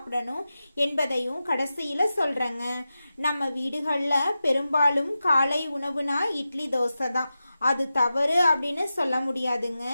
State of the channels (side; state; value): both; inverted; correlation -0.93